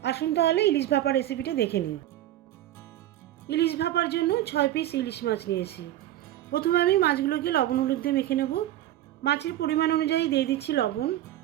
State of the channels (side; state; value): left; quieter; 13.4 dB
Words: আসুন তাহলে ইলিশ ভাপা রেসিপিটা দেখে নিই। ইলিশ ভাপার জন্য 6 পিস ইলিশ মাছ নিয়েছি। প্রথমে আমি মাছগুলোকে লবণ হলুদ দিয়ে মেখে নেব। মাছের পরিমাণ অনুযায়ী দিয়ে দিচ্ছি লবণ,